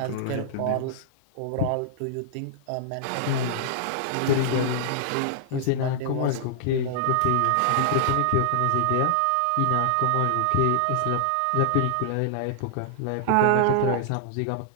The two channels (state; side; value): different; both; correlation -0.01